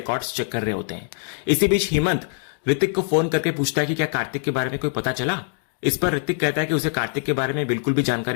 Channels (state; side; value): silent; right; digital silence